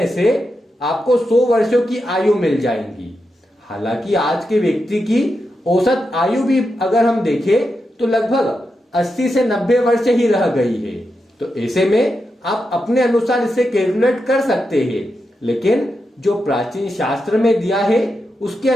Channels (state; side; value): normal; both; correlation 0.87